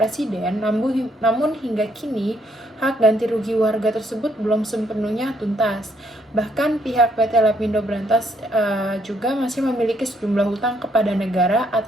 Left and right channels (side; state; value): both; normal; correlation 0.71